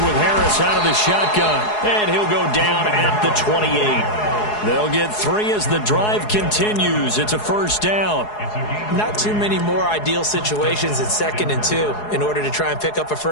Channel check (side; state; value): right; late; 4.7 ms